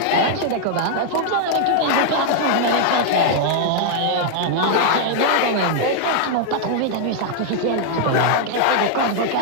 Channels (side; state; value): both; different; correlation 0.00